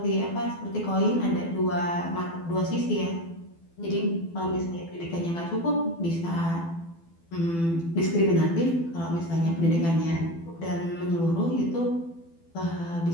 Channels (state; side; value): late; right; 12 ms